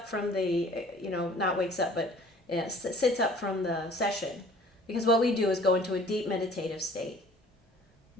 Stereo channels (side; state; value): both; normal; correlation 0.51